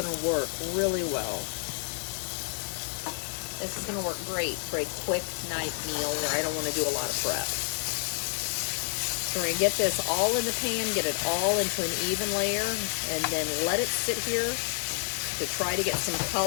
work really well. This is gonna work great for a quick night meal where I don't wanna do a lot of prep. So we're gonna get this all in the pan, get it all into an even layer, and then let it sit here to try to get some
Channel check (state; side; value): silent; right; 58 dB below the other